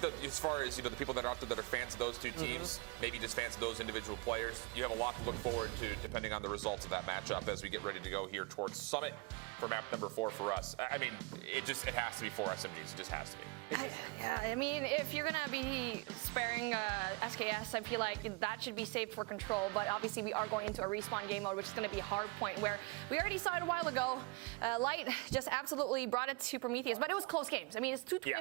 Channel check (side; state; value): left; quieter; 26.8 dB